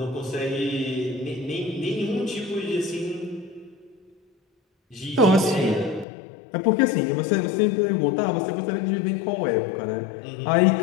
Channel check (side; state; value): right; drops out; at 6.1 s